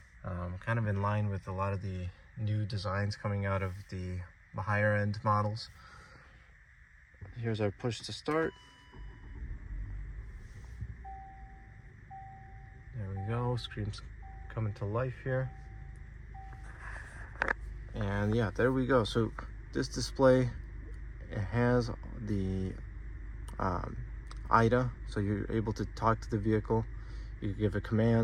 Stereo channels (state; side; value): identical; both; correlation 1.00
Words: kind of in line with a lot of the new designs coming out of the higher end models. Here's our push to start. There we go, screen's coming to life here. And yeah, there we go. So this display, it has the IDA, so you're able to talk to the vehicle. You give it